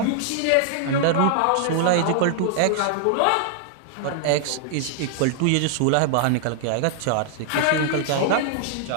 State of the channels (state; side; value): different; both; correlation -0.01